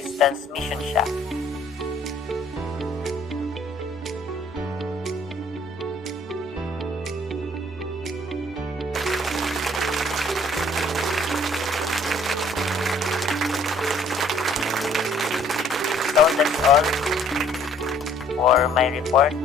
transmission shaft. So that's all for my report,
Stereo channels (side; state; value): both; normal; correlation 0.59